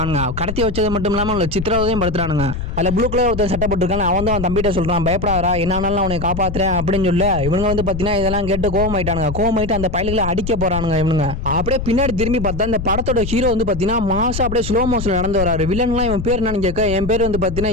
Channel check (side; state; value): left; noise; rumble, 6 dB below the sound